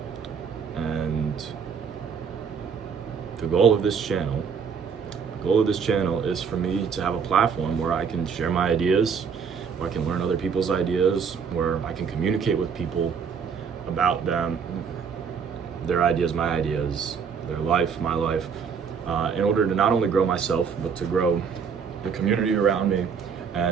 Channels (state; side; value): quieter; left; 6.4 dB